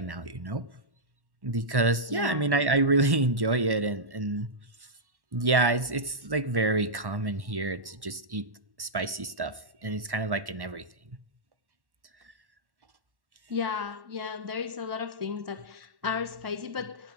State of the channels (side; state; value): left; late; 1.1 ms